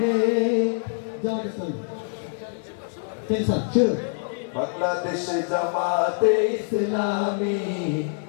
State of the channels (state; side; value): silent; right; 62 dB below the other